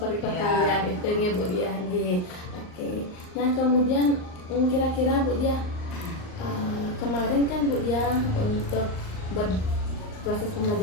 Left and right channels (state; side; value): late; right; 38 ms